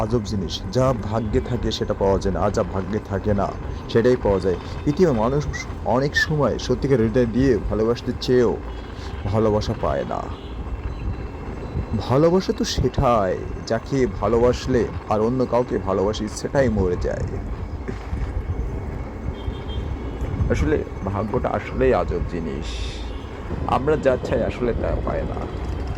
আজব জিনিস, যা ভাগ্যে থাকে সেটা পাওয়া যায় না, আর যা ভাগ্যে থাকে না সেটাই পাওয়া যায়। পৃথিবীর মানুষ অনেক সময় সত্যিকার হৃদয় দিয়ে ভালোবাসতে চেয়েও ভালোবাসা পায় না। ভালোবাসা তো সেটাই, যাকে ভালোবাসলে আর অন্য কাউকে ভালোবাসি সেটাই মরে যায়। আসলে ভাগ্যটা আসলেই আজব জিনিস, আমরা যা চাই আসলে তা পায় না,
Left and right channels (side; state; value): both; identical; correlation 1.00